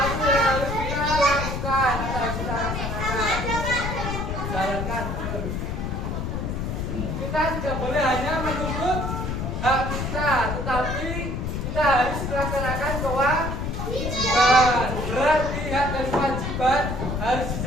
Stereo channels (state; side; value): noise; left; rumble, 3 dB below the sound